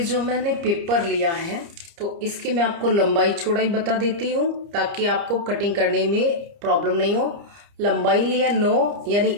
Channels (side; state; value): left; late; 30 ms